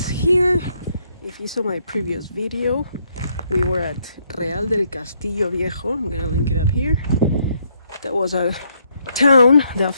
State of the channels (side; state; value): both; inverted; correlation -0.72